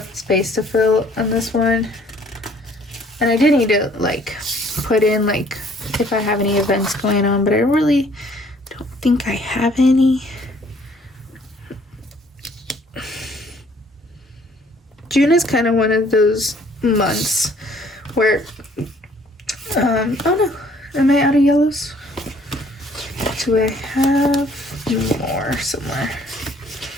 space to fill on this one, and I do need to like put in like if I have any events going on, but I really don't think I have any. June is kind of one of those months where oh no, am I out of yellows? Do I have more somewhere?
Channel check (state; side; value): normal; both; correlation 0.59